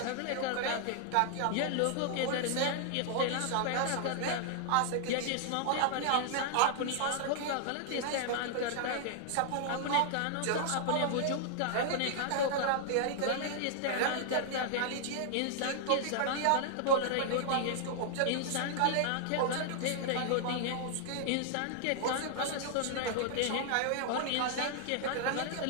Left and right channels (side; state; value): both; different; correlation 0.00